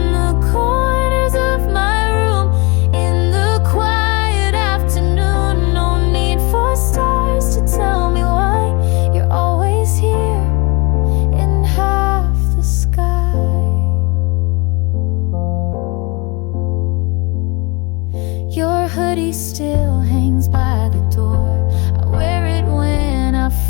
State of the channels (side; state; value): right; quieter; 27.9 dB